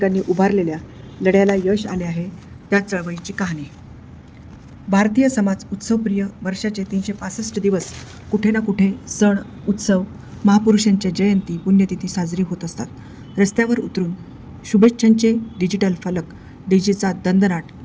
उभारलेल्या लढ्याला यश आले आहे. त्या चळवळीची कहाणी. भारतीय समाज उत्सवप्रिय. वर्षाचे 365 दिवस कुठे ना कुठे सण, उत्सव, महापुरुषांच्या जयंती, पुण्यतिथी साजरी होत असतात. रस्त्यावर उतरून शुभेच्छांचे डिजिटल फलक, डीजेचा दणदणाट,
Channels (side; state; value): both; identical; correlation 1.00